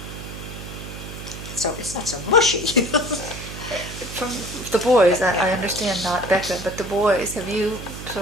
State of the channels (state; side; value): noise; right; hum, 10 dB below the sound